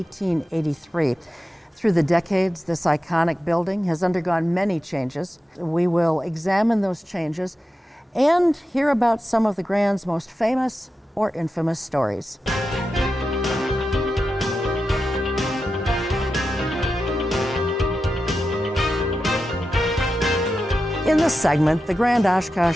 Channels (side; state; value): both; normal; correlation 0.90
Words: Through the decades, this iconic building has undergone many changes. We will examine those changes and hear about some of the Grand's most famous or infamous stories. In this segment, the Grand